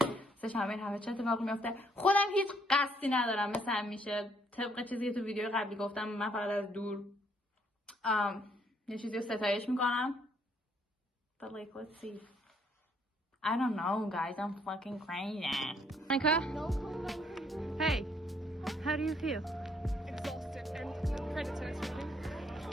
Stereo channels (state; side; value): normal; both; correlation 0.68